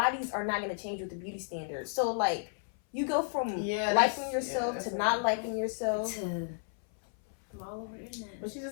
are not going to change with the beauty standards. So, like, you go from Yeah, liking that's- yourself yeah, to that's not liking yourself. I'm all over the internet. But you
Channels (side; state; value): right; silent; 56 dB below the other